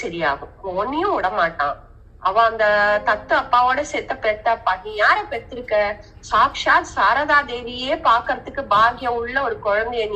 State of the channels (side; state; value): both; identical; correlation 1.00